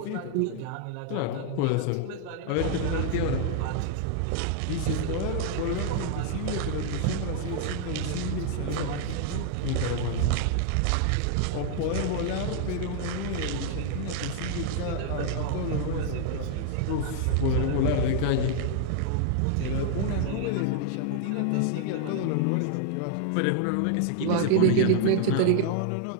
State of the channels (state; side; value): different; both; correlation 0.00